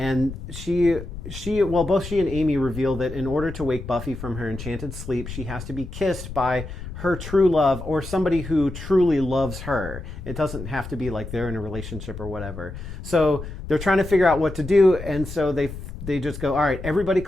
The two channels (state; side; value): noise; left; rumble, 10 dB below the sound